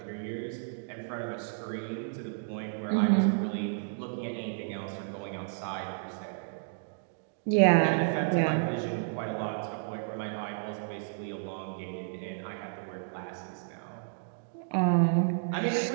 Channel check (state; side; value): silent; left; digital silence